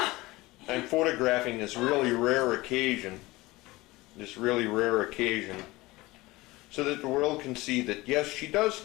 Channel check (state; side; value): quieter; right; 20.4 dB